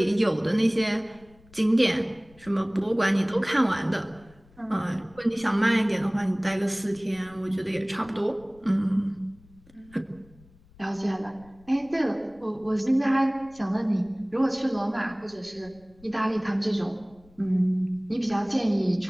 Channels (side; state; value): left; noise; rumble, 27 dB below the sound